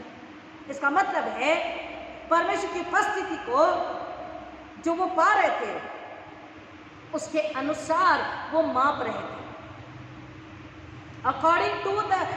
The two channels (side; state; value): both; identical; correlation 1.00